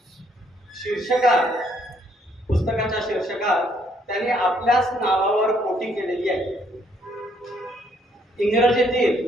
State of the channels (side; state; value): both; normal; correlation 0.68